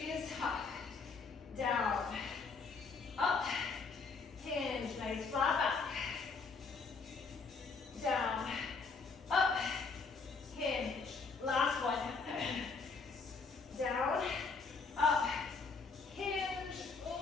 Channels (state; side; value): quieter; right; 4.6 dB